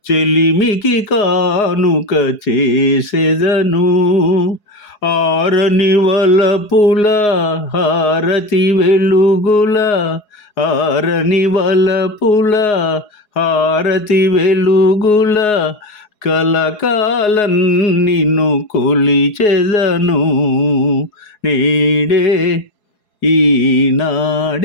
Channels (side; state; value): right; late; 4.8 ms